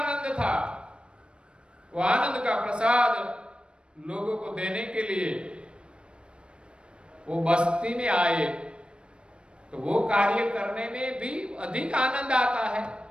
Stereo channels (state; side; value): late; left; 0.056 ms